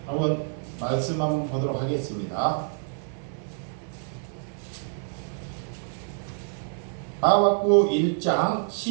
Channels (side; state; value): left; silent; 60 dB below the other